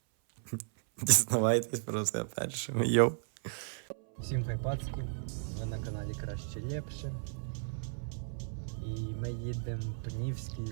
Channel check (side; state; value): left; silent; 55 dB below the other